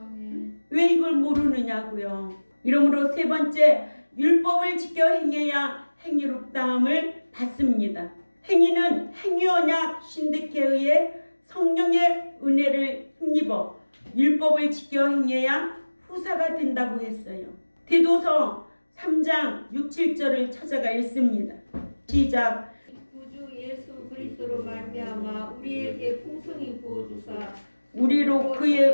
왜 이걸 모르느냐고요. 이러므로 세 번째, 율법을 지켜 행해야 행위롭다함을 받습니다. 행위는 행위언약 신득에 의해 성령의 은혜를 힘입어 율법을 지켜 행해야 후사가 된다고 했어요. 디도서 3장 6, 7절을 찾아가 읽습니다. 시작. 구주 예수 그리스도로 말미암아 우리에게 풍성히 부어주사 우리로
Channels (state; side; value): inverted; both; correlation -1.00